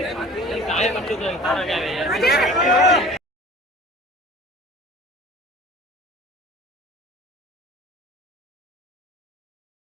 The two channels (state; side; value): normal; both; correlation 0.43